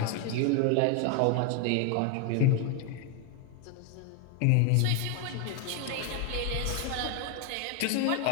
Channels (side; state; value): both; different; correlation 0.01